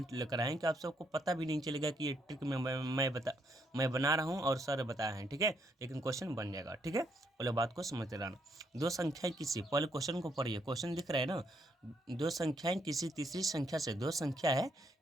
लेकर आए हैं कि आप सबको पता भी नहीं चलेगा कि ये ट्रिक मैं बना रहा हूँ और सर बताए हैं, ठीक है। लेकिन क्वेश्चन बन जाएगा, ठीक है। पहले बात को समझते रहना। दो संख्याएं किसी, पहले क्वेश्चन को पढ़िए, क्वेश्चन दिख रहा है ना। दो संख्याएं किसी तीसरी संख्या से, दो संख्या है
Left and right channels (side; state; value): both; normal; correlation 0.74